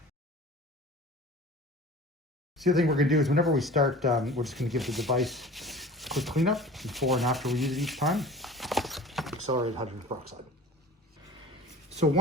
So the other thing we're gonna do is whenever we start, we're just gonna give the device a quick cleanup before and after we use it each time. Accelerated hydrogen peroxide. So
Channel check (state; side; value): normal; both; correlation 0.40